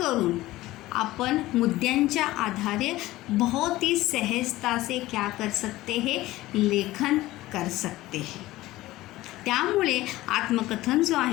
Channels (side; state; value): right; quieter; 17.3 dB